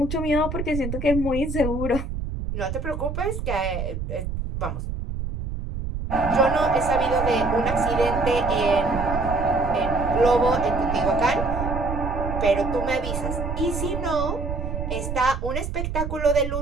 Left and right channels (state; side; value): noise; right; rumble, 5 dB below the sound